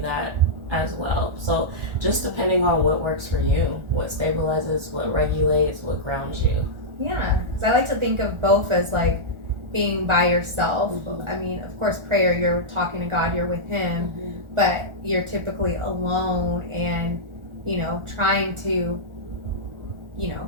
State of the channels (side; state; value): left; late; 1.4 ms